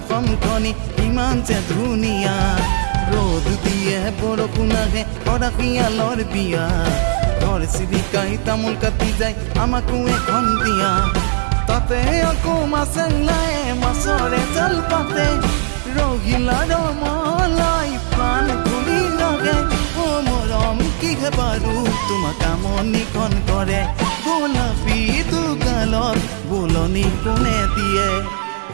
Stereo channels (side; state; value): left; silent; digital silence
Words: ইমান যে ধুনীয়া ৰ'দ দিয়ে বৰষুণ আহে অৰাশিয়ালৰ বিয়া ঘৰ চিৰিকাই তামোল কাটি যায় আমাকো এখন দিয়া তাতে আকৌ মাছে ওলায় মাছৰে জাল পাতে ৰহিলা ৰমলাই প্ৰাণ ঘূৰি লাগে অ মৰম কিহে বাৰু তোমাক আমনিখন কৰে গোলাপী দুগালত বোলনি কোনে দিয়ে